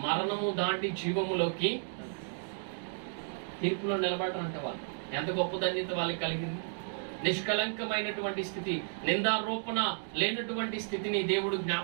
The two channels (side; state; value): left; silent; digital silence